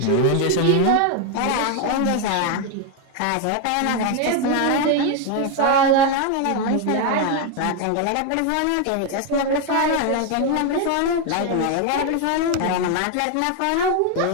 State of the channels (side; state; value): both; different; correlation 0.01